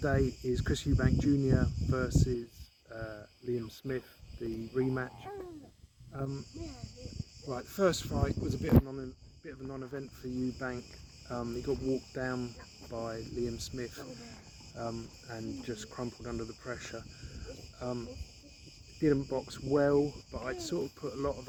is Chris Eubank Jr. versus Liam Smith, the rematch. Right, the first fight was a bit of a non-event for Eubank. He got walked down by Liam Smith and just crumpled under the pressure. Didn't box well, but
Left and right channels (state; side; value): identical; both; correlation 1.00